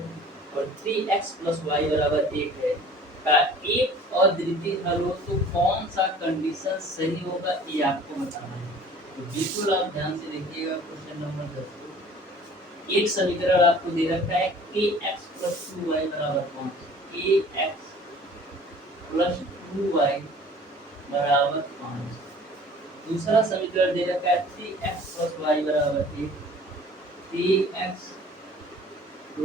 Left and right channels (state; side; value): normal; both; correlation 0.49